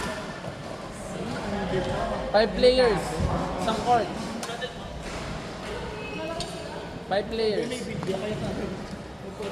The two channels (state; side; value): identical; both; correlation 1.00